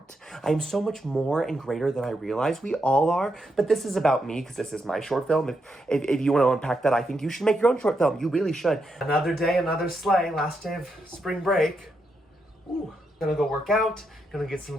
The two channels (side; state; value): both; normal; correlation 0.82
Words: I am so much more and greater than I realize. We all are. But this is about me because this is my short film. If you want to unpack that, I think you should make your own short film. You really should. Another day, another sleigh. Last day of spring break. Ooh, gonna go work out, gonna get